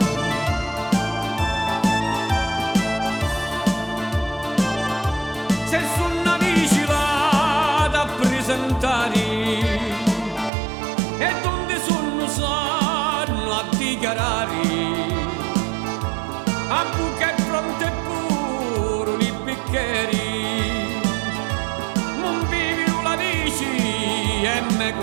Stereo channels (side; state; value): left; drops out; at 10.5 s